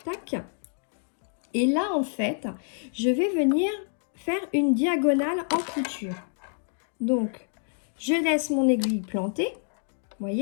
tac. Et là, en fait, je vais venir faire une diagonale en couture. Donc, je laisse mon aiguille plantée, vous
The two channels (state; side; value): silent; right; 60 dB below the other